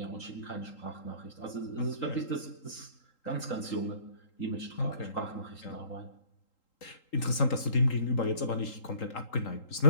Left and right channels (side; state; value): right; late; 3.8 ms